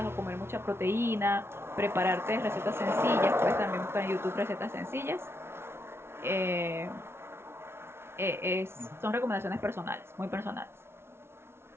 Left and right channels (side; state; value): left; late; 0.12 ms